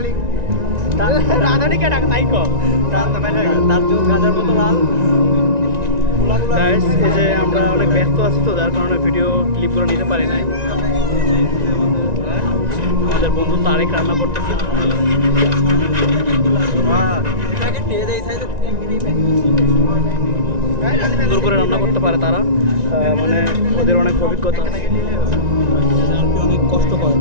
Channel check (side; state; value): left; late; 1.9 ms